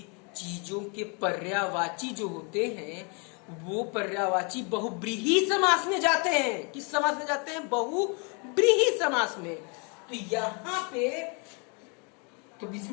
चीजों के पर्यायवाची जो होते हैं वो पर्यायवाची बहुब्रीही समास में जाते हैं। किस समास में जाते हैं, बहुब्रीही समास में। तो यहाँ पे तो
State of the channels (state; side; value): quieter; right; 34.0 dB